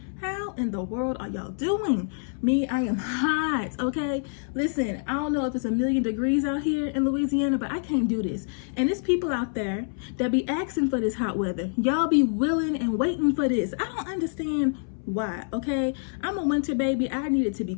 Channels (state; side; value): silent; right; 60 dB below the other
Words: How in the world are y'all doing? Me, I am hot, okay? Listen, I don't know if it's 1,000,000 degrees out here in Louisiana, but I can't do this. And there's people out there that be asking for this hot weather. Y'all be willing and waiting for this. I don't understand why, okay? I'm a winter baby. I need it to be